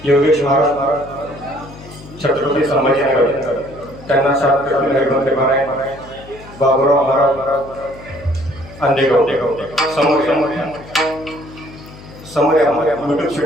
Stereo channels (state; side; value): noise; left; hum, 18 dB below the sound